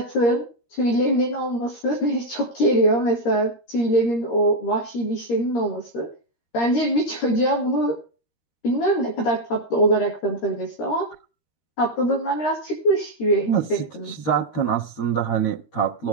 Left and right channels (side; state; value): right; late; 13 ms